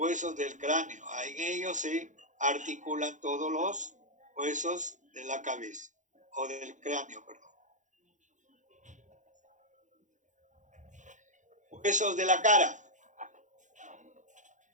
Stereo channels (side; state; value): left; late; 0.36 ms